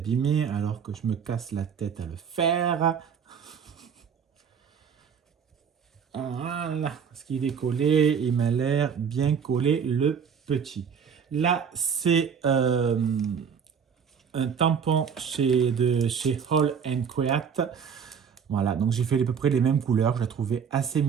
alors que je me casse la tête à le faire. Voilà, ce qu'il est collé, il m'a l'air bien collé le petit. Là, c'est un tampon chez Hall & Quiet. Voilà, donc j'ai fait à peu près les mêmes couleurs. Je la trouvais assez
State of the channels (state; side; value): quieter; left; 6.9 dB